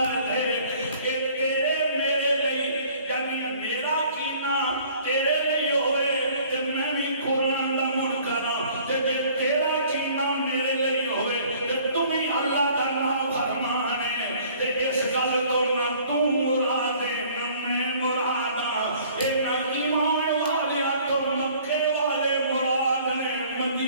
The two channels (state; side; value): inverted; both; correlation -0.54